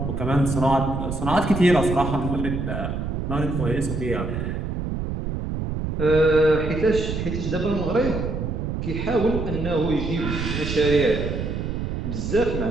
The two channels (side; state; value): right; noise; rumble, 3 dB below the sound